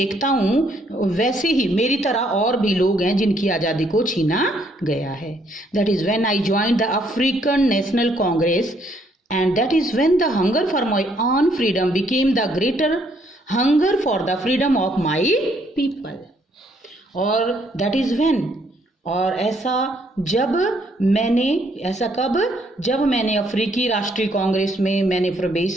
हूँ वैसे ही मेरी तरह और भी लोग हैं जिनकी आज़ादी को छीना गया है। That is when I joined the African national Congress and that is when the hunger for my own freedom became the greater hunger for the freedom of my people. और दैट इज़ व्हेन, और ऐसा जब मैंने, ऐसा कब, जब मैंने अफ्रीकी राष्ट्रीय कांग्रेस में मैंने प्रवेश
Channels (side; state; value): both; normal; correlation 0.69